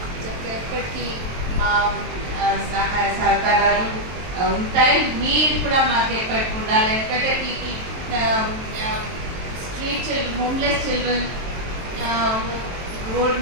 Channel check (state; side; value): late; left; 23 ms